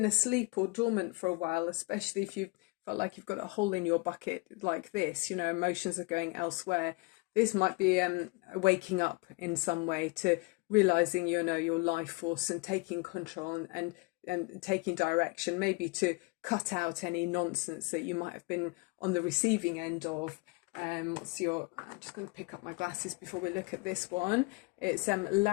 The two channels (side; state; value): right; quieter; 27.4 dB